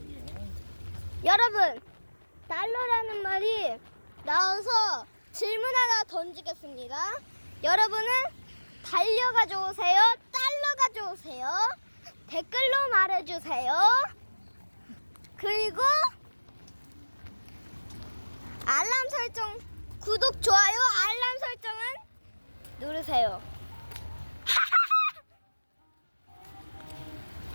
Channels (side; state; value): both; inverted; correlation -1.00